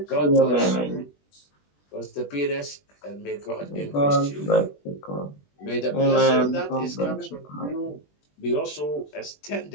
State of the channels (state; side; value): late; right; 20 ms